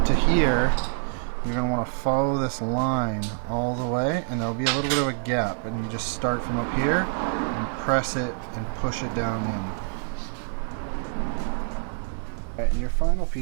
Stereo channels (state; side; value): silent; left; digital silence